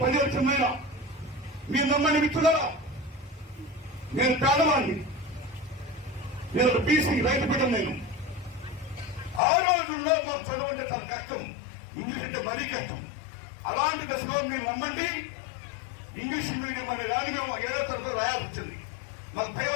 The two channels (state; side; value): drops out; right; at 9.4 s